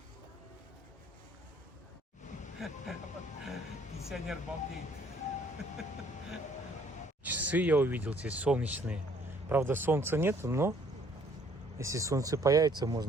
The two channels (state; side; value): normal; both; correlation 0.61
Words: Пенсионер балдеет. Часы я увидел здесь солнечные. Правда, солнца нет, но если солнце появится,